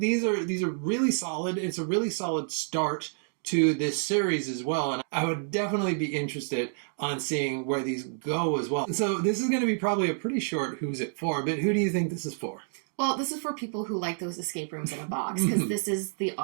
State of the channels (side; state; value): left; silent; digital silence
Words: are really solid. It's a really solid start to this series as well, and I would definitely be interested on seeing where these go as well. So this is going to be probably a pretty short who's it for, but who do you think this is for? Well, this is for people who like those escape rooms in a box, because this is the